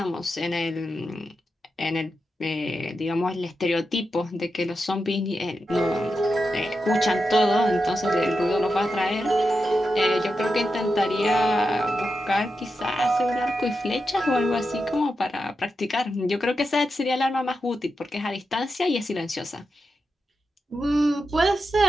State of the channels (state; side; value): normal; both; correlation 0.88